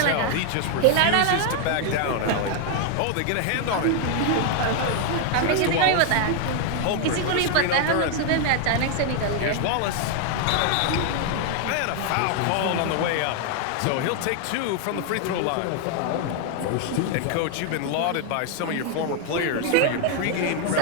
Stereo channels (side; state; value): both; different; correlation 0.00